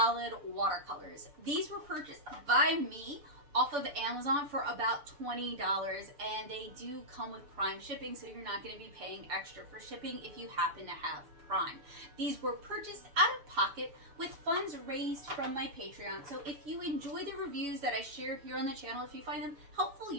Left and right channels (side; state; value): left; late; 7.0 ms